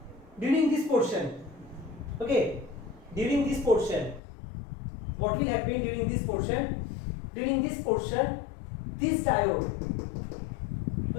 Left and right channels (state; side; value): drops out; right; at 4.2 s